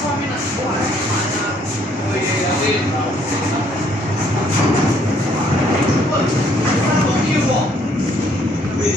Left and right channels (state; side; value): normal; both; correlation 0.65